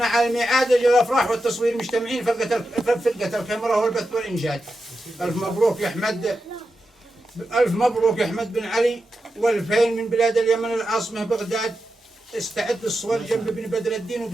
على الميعاد، أجل الأفراح والتصوير مجتمعين فرقة الكاميرا والبث والإنشاد. ألف مبروك يا أحمد، ألف مبروك يا أحمد بن علي، والفين من بلاد اليمن العاصمة بغداد. استعد للصور جنب ابن بدر الدين،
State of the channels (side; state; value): both; normal; correlation 0.89